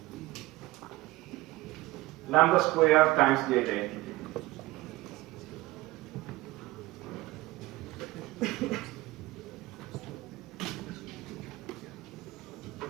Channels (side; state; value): left; quieter; 18.9 dB